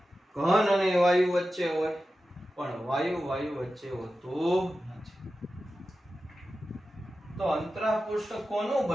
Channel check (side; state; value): both; normal; correlation 0.93